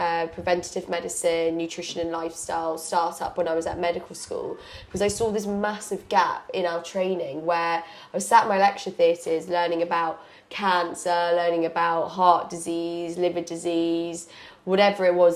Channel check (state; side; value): identical; both; correlation 1.00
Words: preventative medicine, nutrition and lifestyle startup when I was at medical school because I saw this massive gap in our training where I was sat in my lecture theatres learning about cancer, learning about heart disease, liver disease, whatever it